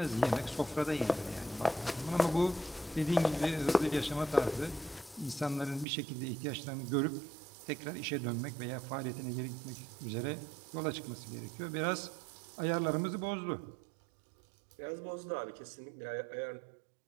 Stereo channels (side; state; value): left; drops out; at 5.9 s